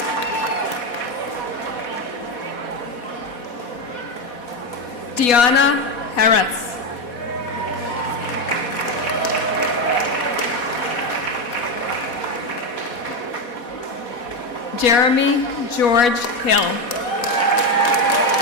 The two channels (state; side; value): late; right; 4.1 ms